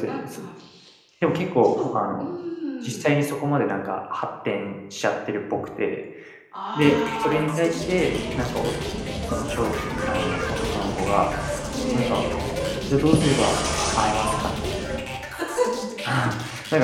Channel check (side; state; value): both; identical; correlation 1.00